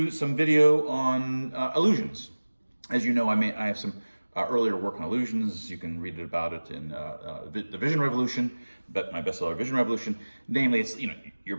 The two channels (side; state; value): both; inverted; correlation -1.00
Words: some video on illusions." As you know, I have some earlier work on illusions. You can read about it in the Vision Revolution, but my bestseller, Vision Revolution. Namely, it's your